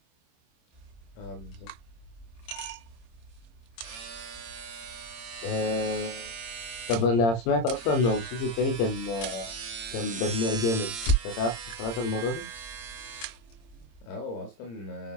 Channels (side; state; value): right; late; 26 ms